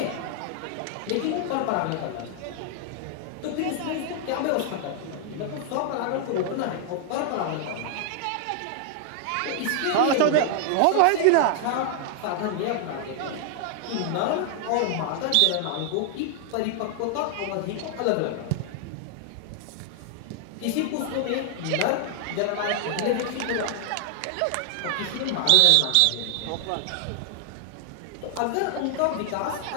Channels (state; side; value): different; both; correlation 0.00